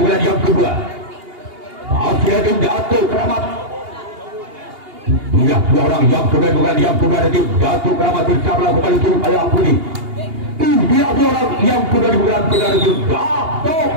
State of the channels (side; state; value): left; late; 2.8 ms